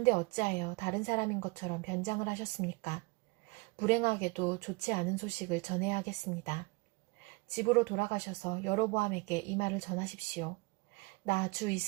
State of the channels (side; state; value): left; quieter; 26.8 dB